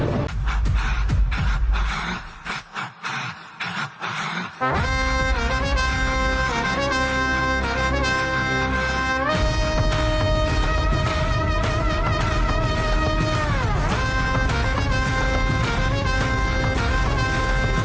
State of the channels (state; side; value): identical; both; correlation 1.00